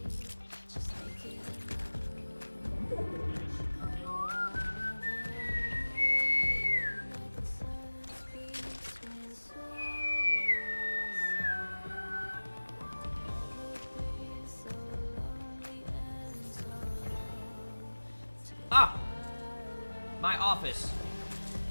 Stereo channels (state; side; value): inverted; both; correlation -1.00